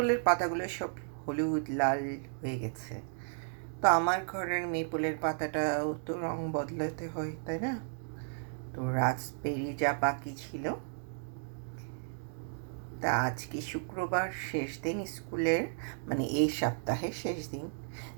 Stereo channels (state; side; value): silent; left; digital silence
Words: পাতাগুলো সব হলুদ লাল হয়ে গেছে। তো আমার ঘরের মেপলের পাতাটাও তো রং বদলাতে হয়, তাই না? তো রাস্পবেরি যা বাকি ছিল, তা আজকে শুক্রবার শেষ দিন স্কুলের, মানে এই সপ্তাহের শেষ দিন।